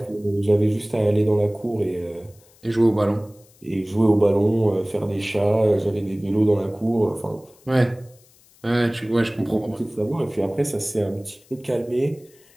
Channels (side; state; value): left; noise; hiss, 29 dB below the sound